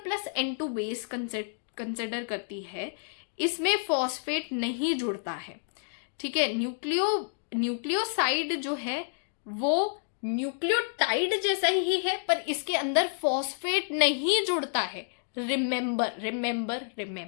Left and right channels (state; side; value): silent; right; digital silence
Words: N2 base consider करती है, इसमें फॉस्फेट नहीं जुड़ता है, ठीक है। न्यूक्लियोसाइड जो है वो न्यूक्लियोटाइड जैसा ही है, पर इसके अंदर फॉस्फेट नहीं जुड़ता है। Remember remember